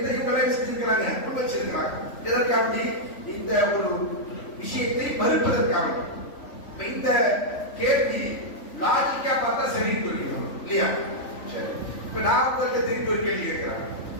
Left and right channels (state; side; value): late; right; 3.5 ms